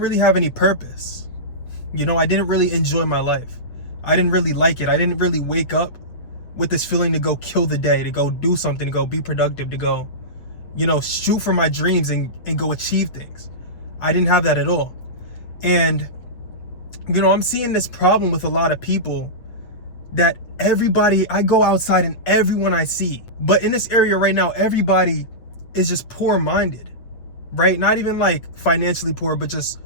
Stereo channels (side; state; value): right; late; 8.4 ms